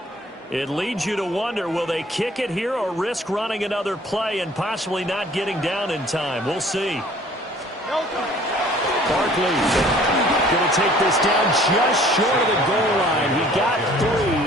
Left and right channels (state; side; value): normal; both; correlation 0.53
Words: It leads you to wonder, will they kick it here or risk running another play and possibly not getting down in time? We'll see. Barkley going to take this down just short of the goal line. He got